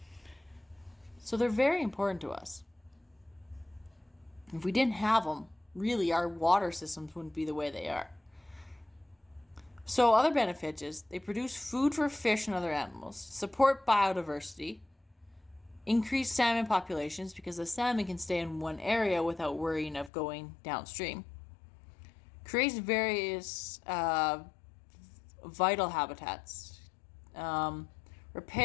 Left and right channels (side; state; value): right; drops out; at 20.1 s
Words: So they're very important to us. If we didn't have them, really our water systems wouldn't be the way they are. So other benefits is they produce food for fish and other animals, support biodiversity, increase salmon populations because the salmon can stay in one area without worrying of going downstream, creates various vital habitats,